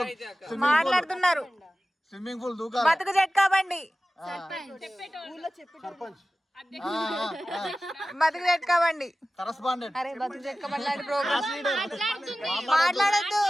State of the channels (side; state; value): both; normal; correlation 0.96